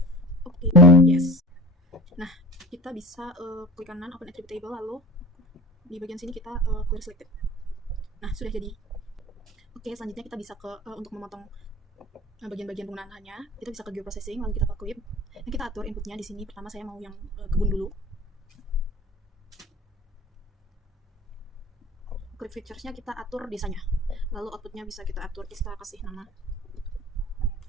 Oke, yes. Nah, kita bisa klik kanan, open attribute table, lalu di bagian sini kita clear selected. Nah, sudah jadi. Oke, selanjutnya kita bisa untuk memotong bagian-bagian penggunaan lahannya, kita bisa ke geoprocessing, lalu kita ke clip. Nah, kita atur inputnya di sini. Pertama saya mau yang kebun dulu. Clip features-nya kita atur desanya. Lalu outputnya bisa kita atur, kita kasih nama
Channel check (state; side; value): normal; both; correlation 0.36